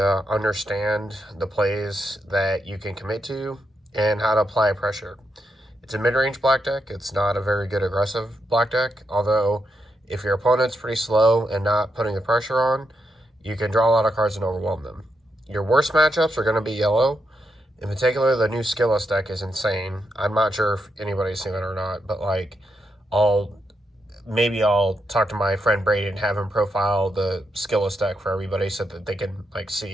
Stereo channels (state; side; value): normal; both; correlation 0.82